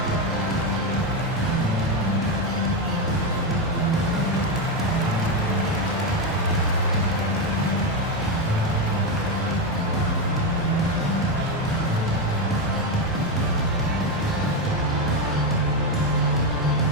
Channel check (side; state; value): both; normal; correlation 0.09